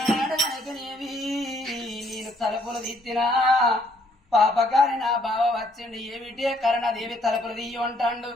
నేను తలుపులు తీర్చినా పాపకారి నా బావ వచ్చిండు ఏమిటి కరణదేవి తలుపులు తీయ అంటాడు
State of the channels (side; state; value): both; normal; correlation 0.67